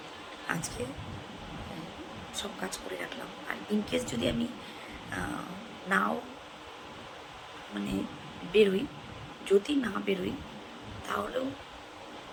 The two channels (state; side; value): identical; both; correlation 1.00